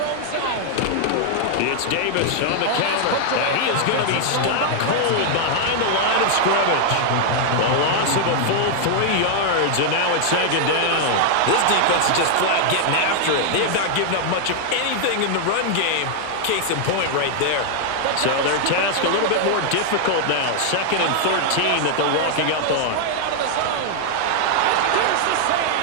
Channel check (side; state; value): both; different; correlation -0.01